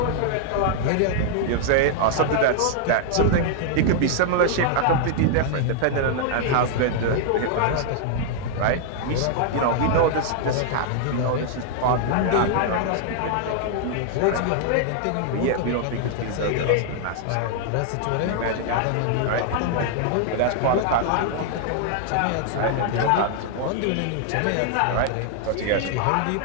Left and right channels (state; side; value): different; both; correlation 0.00